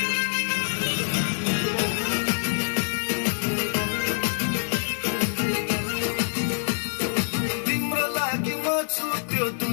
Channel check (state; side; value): silent; right; 60 dB below the other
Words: तिम्रो लागि म छु त्यो